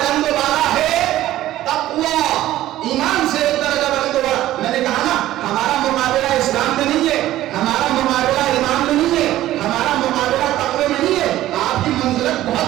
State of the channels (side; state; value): left; quieter; 14.4 dB